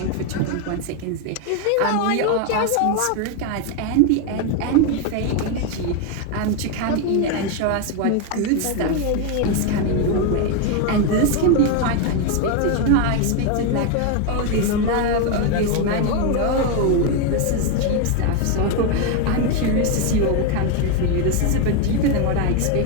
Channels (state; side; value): different; both; correlation 0.01